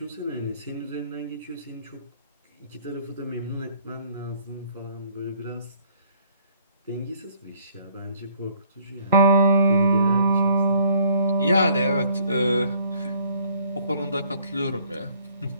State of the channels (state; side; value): inverted; both; correlation -0.61